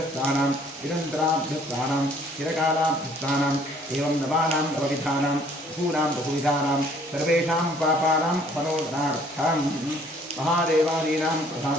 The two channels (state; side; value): normal; both; correlation 0.59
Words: निरन्तराभ्यस्तानां चिरकालाभ्यस्तानाम् एवं नवानां नवविधानां बहूनां बहुविधानां सर्वेषां पापानां फलोदनार्थं महादेवादीनां